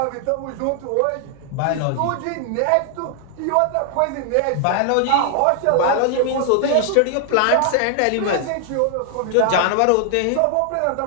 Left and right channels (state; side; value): different; both; correlation 0.00